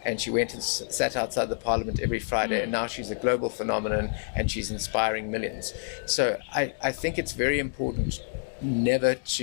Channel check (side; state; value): right; silent; digital silence